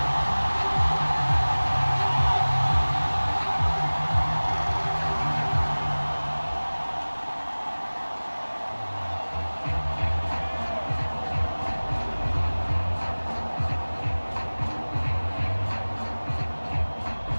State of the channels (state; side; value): inverted; both; correlation -1.00